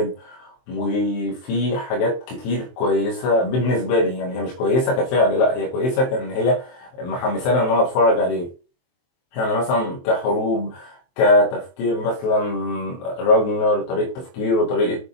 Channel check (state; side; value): late; right; 23 ms